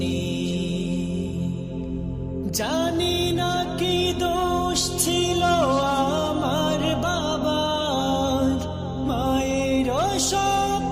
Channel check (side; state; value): both; identical; correlation 1.00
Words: নেই। জানি না কি দোষ ছিল আমার বাবার, মায়ের